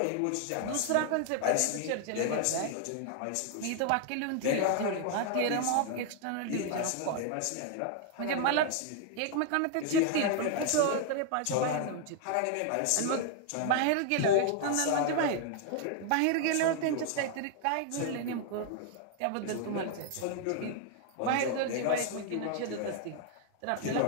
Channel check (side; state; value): both; different; correlation 0.00